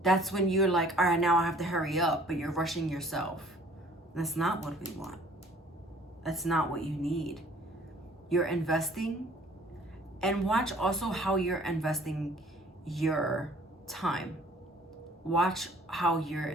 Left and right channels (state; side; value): normal; both; correlation 0.55